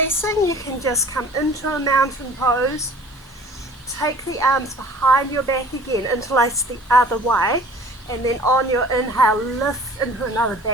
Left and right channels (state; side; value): normal; both; correlation 0.47